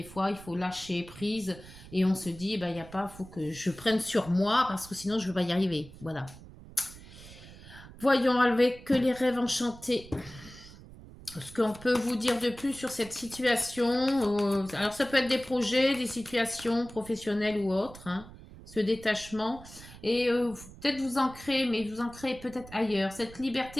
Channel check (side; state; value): right; noise; rumble, 18 dB below the sound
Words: fois, il faut lâcher prise et on se dit, ben, il y a pas, faut que je prenne sur moi parce que sinon, je ne vais pas y arriver. Voilà. Voyons avec les rêves enchantés. Ce qu'on peut vous dire de plus sur cette situation, alors ça peut être des projets, des situations professionnelles ou autres. Hein. ce détachement. Et peut-être vous ancrer, mais vous ancrer peut-être ailleurs. Cette